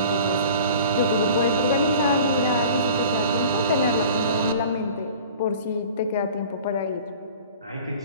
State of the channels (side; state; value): both; inverted; correlation -0.44